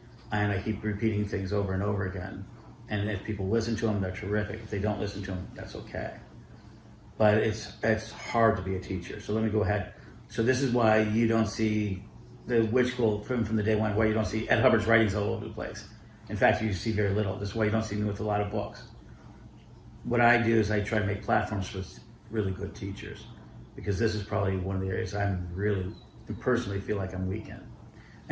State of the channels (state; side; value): identical; both; correlation 1.00